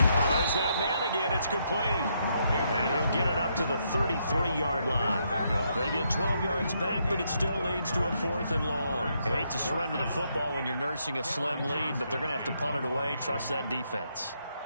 there's that man again. It's complete. And he'll get it up to the 33-yard line. They get 12 yards back, but it still leads to a 4th and long. You hate to surrender the football when you're nursing a slim lead, but they're going to have to punt it away. Trust that defense.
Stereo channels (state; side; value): inverted; both; correlation -0.76